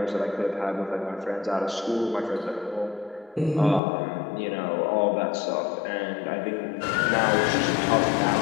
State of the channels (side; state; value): right; drops out; at 3.8 s